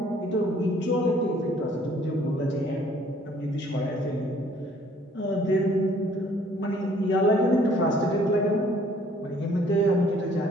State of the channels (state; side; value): normal; both; correlation 0.59